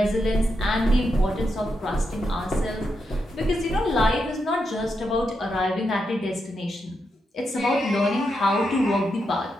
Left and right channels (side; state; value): both; normal; correlation 0.84